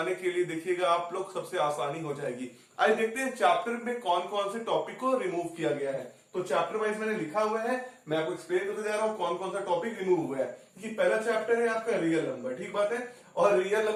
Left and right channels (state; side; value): identical; both; correlation 1.00